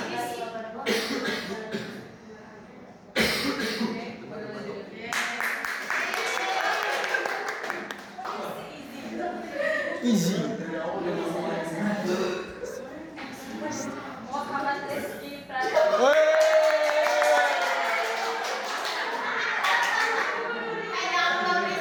Easy. Muhammad Rizky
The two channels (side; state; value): both; identical; correlation 1.00